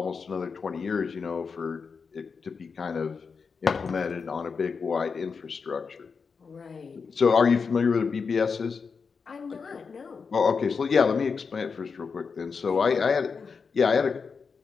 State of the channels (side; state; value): right; quieter; 5.4 dB